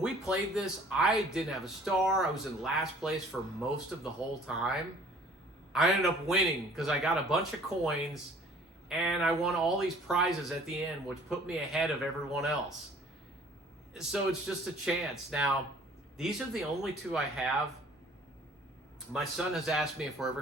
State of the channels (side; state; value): both; normal; correlation 0.53